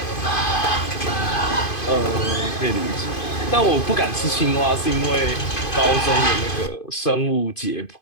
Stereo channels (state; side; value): late; right; 2.5 ms